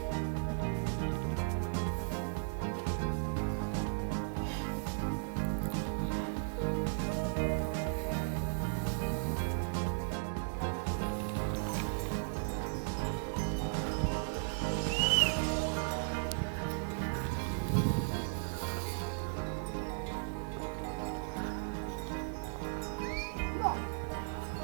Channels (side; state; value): left; silent; 54 dB below the other